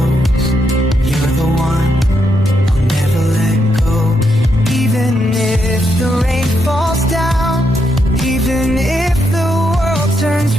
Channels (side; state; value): both; normal; correlation 0.80